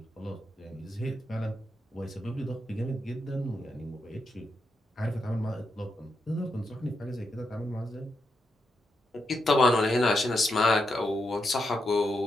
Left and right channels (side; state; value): both; normal; correlation 0.83